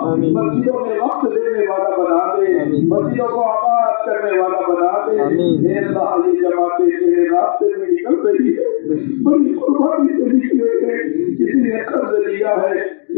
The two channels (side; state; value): right; silent; digital silence